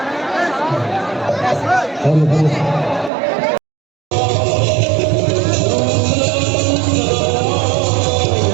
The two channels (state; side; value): drops out; left; at 3.1 s